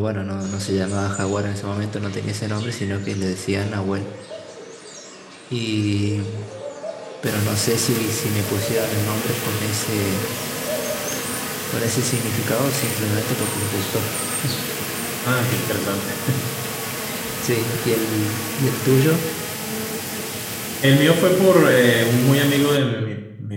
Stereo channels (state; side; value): identical; both; correlation 1.00